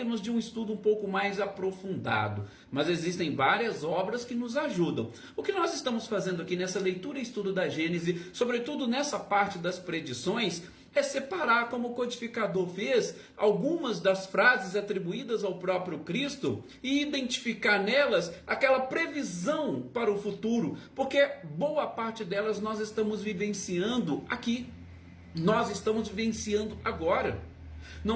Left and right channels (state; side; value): identical; both; correlation 1.00